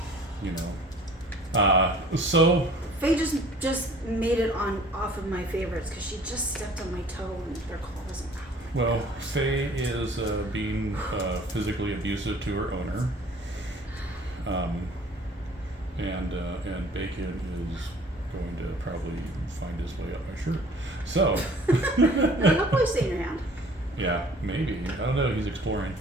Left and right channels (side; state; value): both; normal; correlation 0.51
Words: So Faye just made it off of my favorites because she just stepped on my toe and their claw wasn't out. well, Faye is being physically abusive to her owner. And Bacon is going to probably find his way up my shirt. So, He'll probably stay in your hand. yeah, maybe. I don't know. He's exploring.